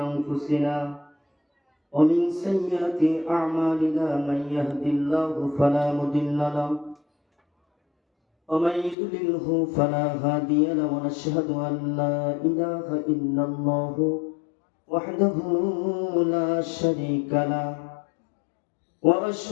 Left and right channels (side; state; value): right; drops out; at 9.0 s